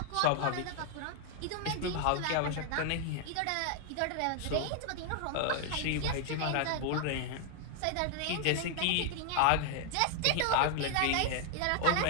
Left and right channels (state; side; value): different; both; correlation 0.00